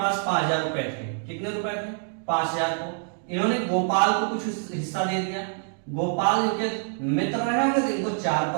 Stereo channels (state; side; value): silent; left; 59 dB below the other